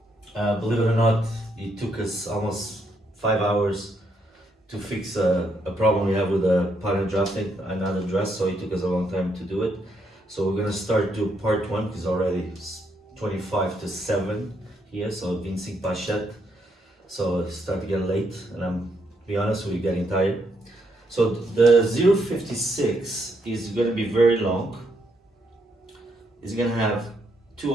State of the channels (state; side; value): normal; both; correlation 0.76